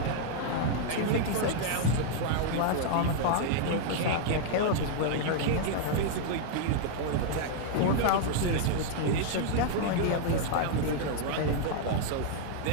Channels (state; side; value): different; both; correlation 0.00